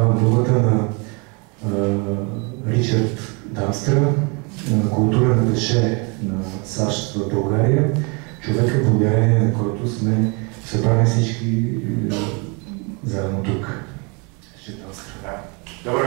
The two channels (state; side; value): quieter; left; 32.0 dB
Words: думата на Ричард Дамстра, културен аташе на САЩ в България, човека, благодарение на който сме събрани всички заедно тук. Ричард Дамстра. Добър